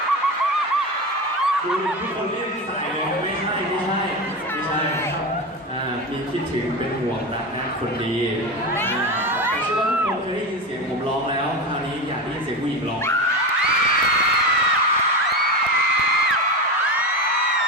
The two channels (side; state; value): both; normal; correlation 0.21